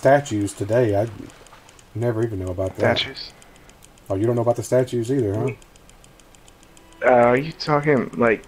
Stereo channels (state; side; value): identical; both; correlation 1.00